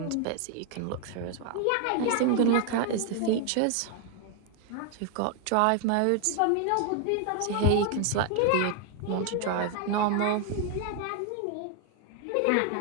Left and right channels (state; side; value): different; both; correlation 0.00